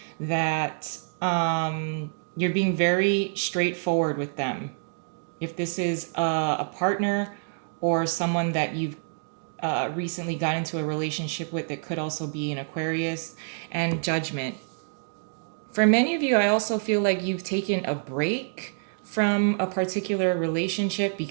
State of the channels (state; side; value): silent; left; digital silence